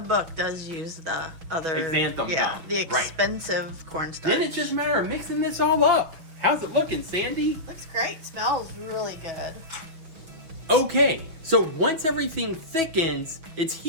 book does use the other xanthan gum. the expensive cornstarch. Then it's just a matter of mixing this all up. How's it looking, Sandy? Looks great. Smells really good. Okay, so once everything thickens, it's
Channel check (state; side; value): late; left; 6.1 ms